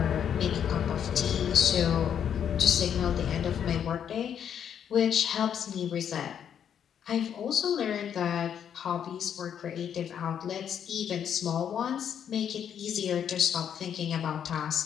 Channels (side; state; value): right; quieter; 8.7 dB